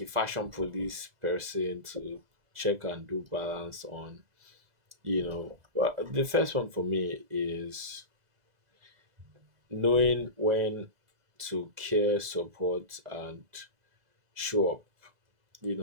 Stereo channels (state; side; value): late; left; 2.0 ms